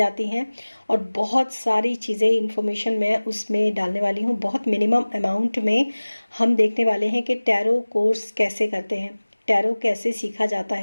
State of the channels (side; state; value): both; inverted; correlation -1.00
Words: हैं, और बहुत सारी चीज़ें इन्फॉर्मेशन मैं उसमें डालने वाली हूँ। बहुत मिनिमम अमाउंट में हम देखने वाले हैं कि टैरो कोर्स कैसे करते हैं, टैरो कैसे सीखा जाता